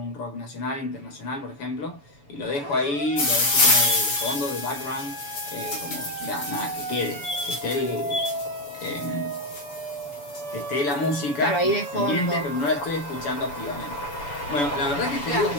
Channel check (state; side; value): late; right; 7.0 ms